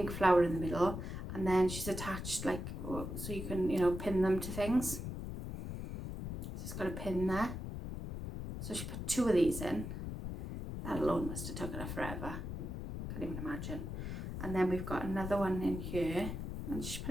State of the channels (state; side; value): noise; left; rumble, 6 dB below the sound